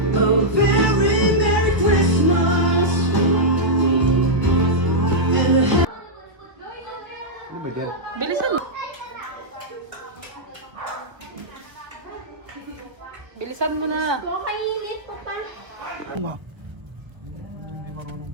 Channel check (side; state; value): left; late; 1.5 ms